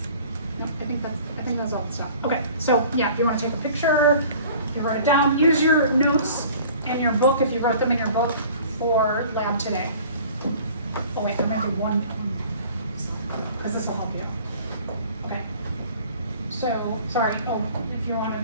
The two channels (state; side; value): inverted; both; correlation -0.48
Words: No, I think that's all the stuff. Okay, so yeah, if you want to take a picture, you write it down. Use your notes in your book if you wrote them in your book for lab today. Oh wait, I'm gonna do one because this will help you. Okay. So sorry. Oh, if you